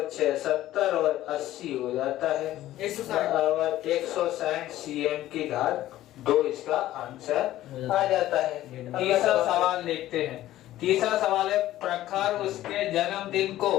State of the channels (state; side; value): quieter; right; 14.3 dB